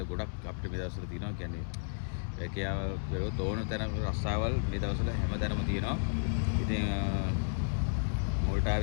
ගොඩක් අපිට මේ දවස්වල තියෙනවා. කියන්නේ ඒකියාව බැලුවොත් ඕන තැන රස්සාවල් මේ දවස්වල හැමතැනම තියෙනවා. ඉතින්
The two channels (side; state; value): right; silent; digital silence